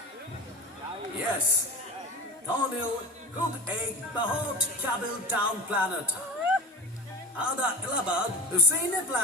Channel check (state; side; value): normal; both; correlation 0.30